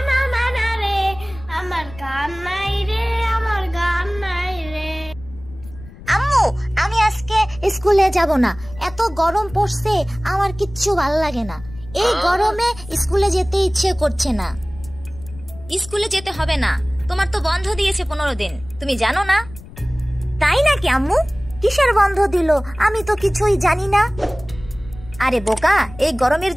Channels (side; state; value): left; noise; rumble, 17 dB below the sound